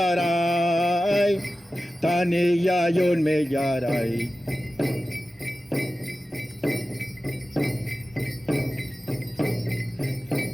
taniya yun miyaray.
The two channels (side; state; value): both; normal; correlation 0.95